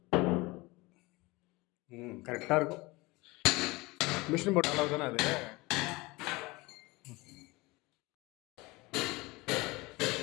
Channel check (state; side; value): quieter; right; 22.9 dB